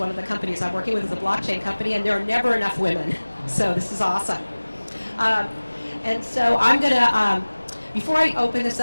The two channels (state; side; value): inverted; both; correlation -1.00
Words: of the companies I'm working with is a blockchain company, and there are never enough women. So this is awesome. And so I'm going to, before I open this